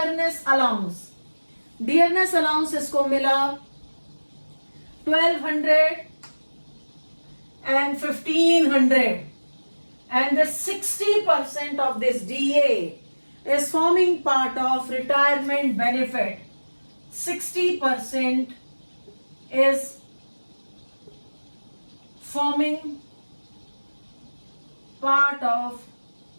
अलाउंस इसको मिला 1,200 and 1,500, and the 60% of this DA is forming part of retirement benefit. 60% is forming part of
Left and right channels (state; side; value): inverted; both; correlation -1.00